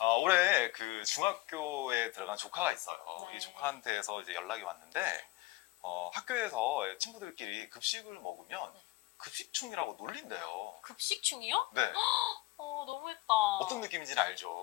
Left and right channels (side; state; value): right; quieter; 19.1 dB